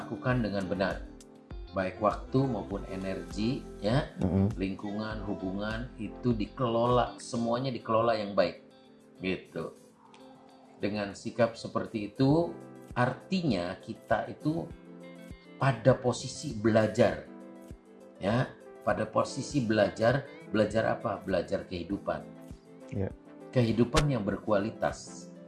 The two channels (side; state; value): both; identical; correlation 1.00